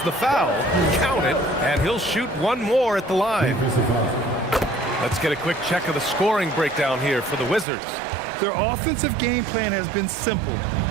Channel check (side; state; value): left; drops out; at 7.7 s